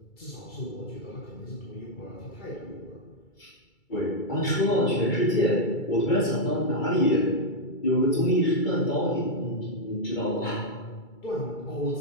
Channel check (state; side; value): late; right; 2.3 ms